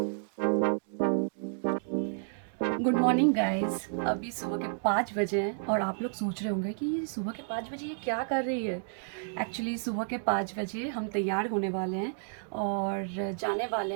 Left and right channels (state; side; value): silent; left; digital silence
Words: गुड मॉर्निंग गाइस। अभी सुबह के 5 बजे हैं और आप लोग सोच रहे होंगे कि ये सुबह के 5 बजे ये क्या कर रही है। एक्चुअली सुबह के 5 बजे हम तैयार होने वाले हैं और जाने वाले